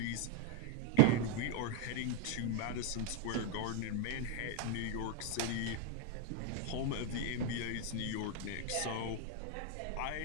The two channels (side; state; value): both; different; correlation 0.00